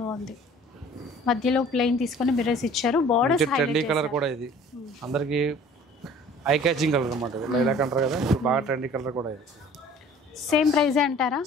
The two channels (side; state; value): both; normal; correlation 0.49